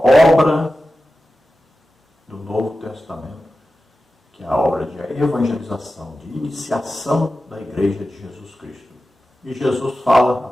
obra do Novo Testamento, que é a obra de evangelização, de iniciação da Igreja de Jesus Cristo. E Jesus fala a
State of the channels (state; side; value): normal; both; correlation 0.93